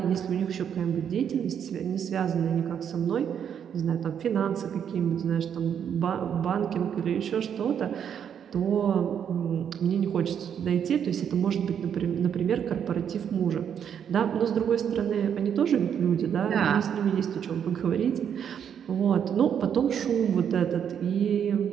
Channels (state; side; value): quieter; left; 8.4 dB